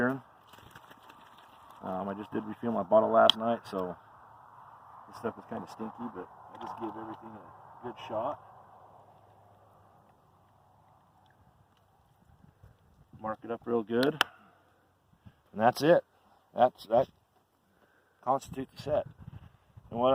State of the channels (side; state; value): both; identical; correlation 1.00